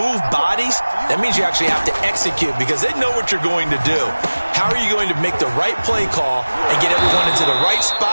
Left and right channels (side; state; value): both; inverted; correlation -1.00